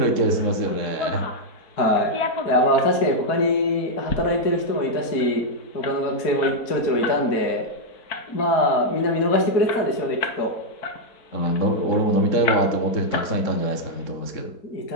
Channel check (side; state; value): right; late; 4.5 ms